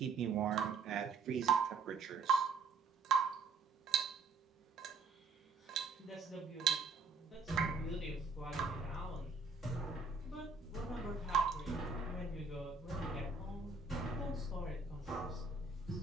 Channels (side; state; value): left; quieter; 4.5 dB